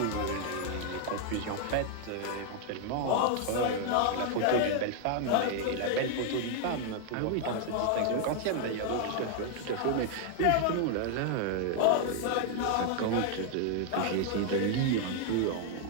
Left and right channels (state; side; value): different; both; correlation 0.00